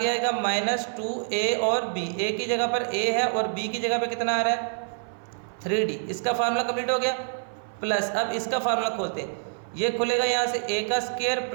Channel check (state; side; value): silent; left; 55 dB below the other